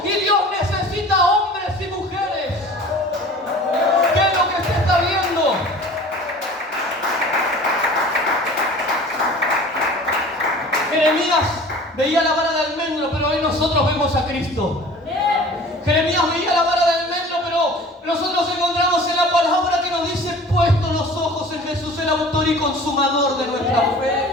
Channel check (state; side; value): normal; both; correlation 0.43